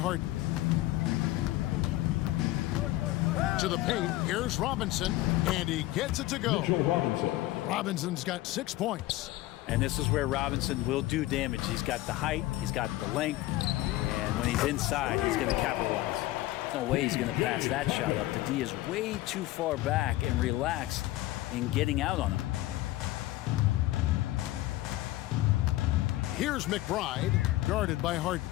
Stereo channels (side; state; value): right; quieter; 16.9 dB